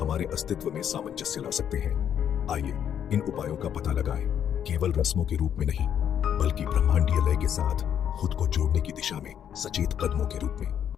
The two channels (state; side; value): quieter; right; 9.2 dB